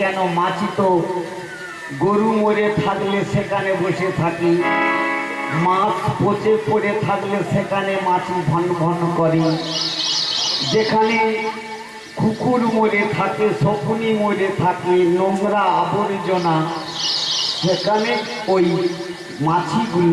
কেন, মাছি তো গরু মরে থাকলে সেখানে বসে থাকি, মাছ পচে পড়ে থাকলে সেখানে মাছি ভন ভন করে, যেখানে কুকুর মরে থাকে, শকুনি মরে থাকে, নোংরা আবর্জনা, সেখানে ওই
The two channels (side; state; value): both; identical; correlation 1.00